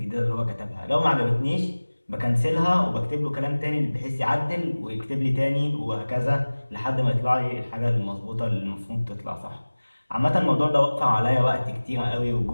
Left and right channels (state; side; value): inverted; both; correlation -1.00